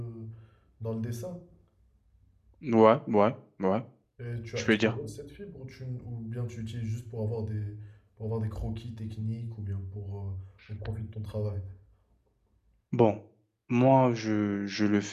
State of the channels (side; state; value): both; identical; correlation 1.00